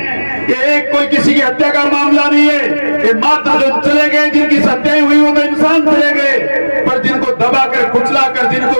ये एक कोई किसी की हत्या का मामला नहीं है। ये मात्र जो चले गए, जिनकी हत्याएं हुई वो तो इंसान चले गए, पर जिनको दबाकर कुचलाकर,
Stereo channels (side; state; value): both; inverted; correlation -1.00